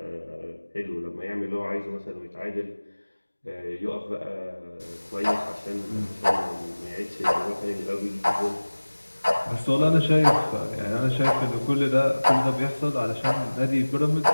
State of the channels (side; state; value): both; inverted; correlation -1.00